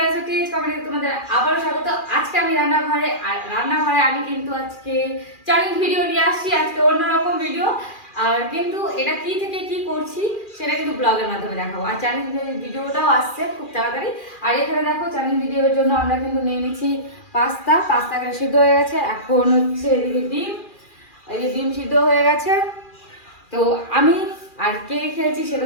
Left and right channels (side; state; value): right; late; 2.4 ms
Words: Sutij comedy. তোমাদের আবারও স্বাগত। আজকে আমি রান্নাঘরে, আর রান্নাঘরে আমি কিন্তু আজকে চ্যালেঞ্জ ভিডিও নিয়ে আসছি। আজকে অন্যরকম ভিডিও, আর কিন্তু এটা কি থেকে কি করছি সেটা কিন্তু ব্লগের মাধ্যমে দেখাবো। আর চ্যালেঞ্জ ভিডিওটাও আসছে খুব তাড়াতাড়ি। আর এখানে দেখো চ্যালেঞ্জ ভিডিওর জন্য আমরা কিন্তু নিয়ে নিচ্ছি পাস্তাকে সিদ্ধ হয়ে গেছে। এখন হচ্ছে এদিকে ডিম, এই যে ডিম সিদ্ধ হয়ে গেছে। তো আমি আর কে খেয়েছি সেটা